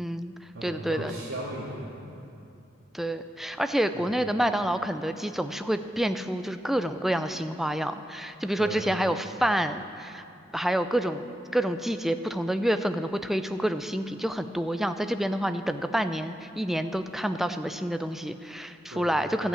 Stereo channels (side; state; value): both; normal; correlation 0.88